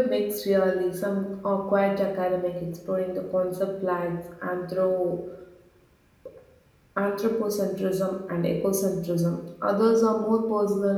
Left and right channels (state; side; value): identical; both; correlation 1.00